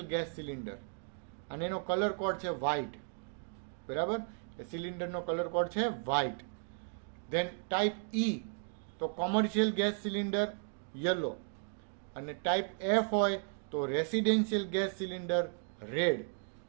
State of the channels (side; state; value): left; silent; 54 dB below the other